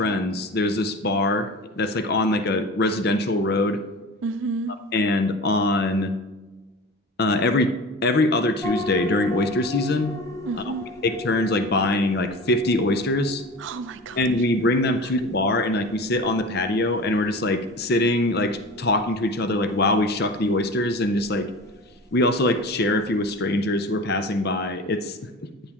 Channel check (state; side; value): normal; both; correlation 0.35